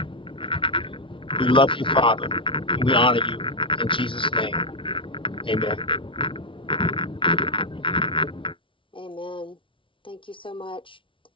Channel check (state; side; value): late; right; 0.25 ms